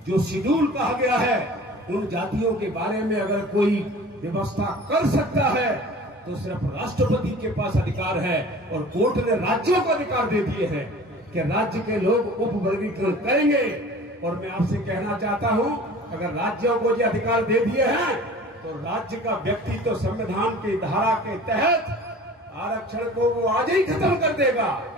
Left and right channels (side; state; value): both; normal; correlation 0.43